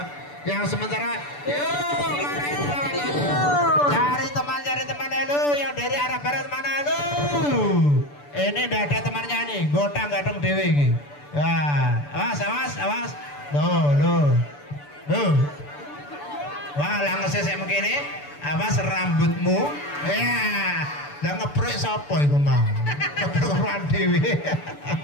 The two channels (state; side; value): late; right; 6.9 ms